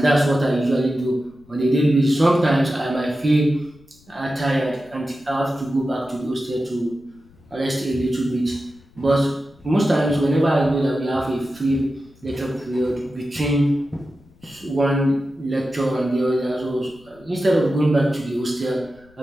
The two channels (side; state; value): left; noise; rumble, 28 dB below the sound